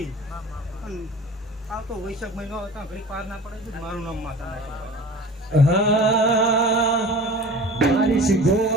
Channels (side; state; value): both; normal; correlation 0.40